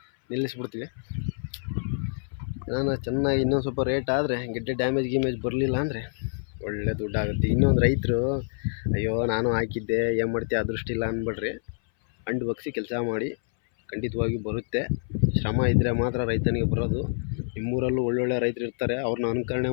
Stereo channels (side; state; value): right; silent; 59 dB below the other